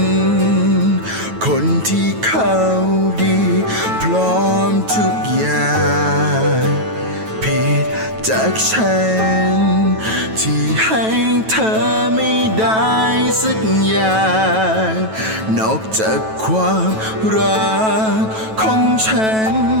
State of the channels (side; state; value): left; late; 9.2 ms